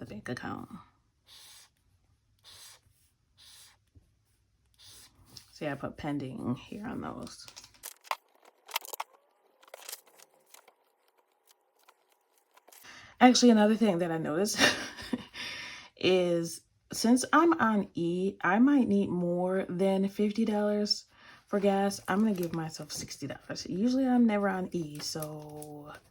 bank account. See, I put pending here on those. Actually, another thing that I noticed is since I'm on E, I might need more than $50 for gas. I'm going to give myself $60. Usually I'm never on E, so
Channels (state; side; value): identical; both; correlation 1.00